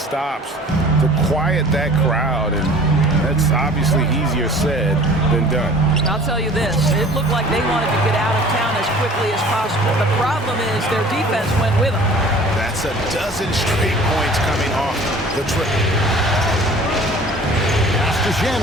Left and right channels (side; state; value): both; normal; correlation 0.47